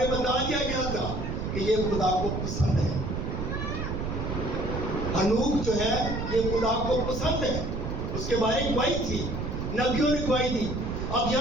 بتا دیا گیا تھا کہ یہ خدا کو پسند ہے۔ ہنوک جو ہے یہ خدا کو پسند ہے، اس کے بارے گواہی تھی، نبیوں نے گواہی دی۔ اب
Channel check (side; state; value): right; noise; rumble, 3 dB below the sound